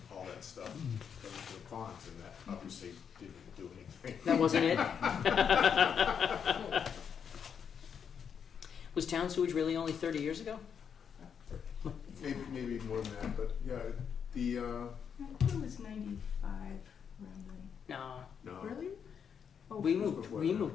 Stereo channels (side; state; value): right; quieter; 7.3 dB